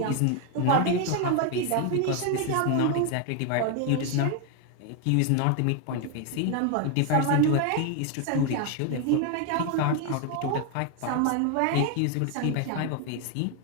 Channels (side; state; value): both; different; correlation 0.01